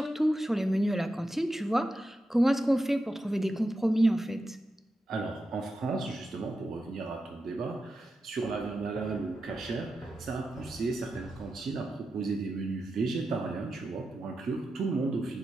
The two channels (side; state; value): both; normal; correlation 0.89